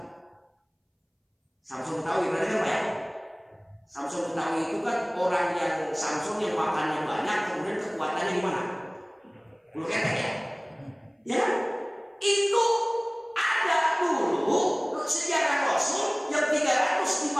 Samson Betawi berarti kan Pak ya? Samson Betawi itu kan orang yang Samson yang makannya banyak, kemudian kekuatannya gimana? Bulu ketek ya? Ya, itu ada dulu sejarah Rasul yang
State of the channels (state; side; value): identical; both; correlation 1.00